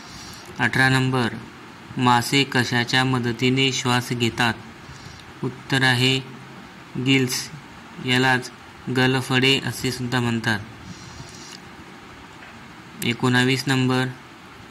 18 नंबर, मासे कशाच्या मदतीने श्वास घेतात? उत्तर आहे गिल्स, यालाच गलफडे असे सुद्धा म्हणतात। 19 नंबर,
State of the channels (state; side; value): identical; both; correlation 1.00